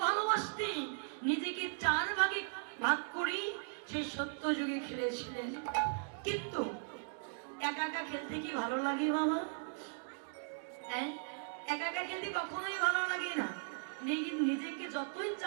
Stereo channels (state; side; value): silent; left; digital silence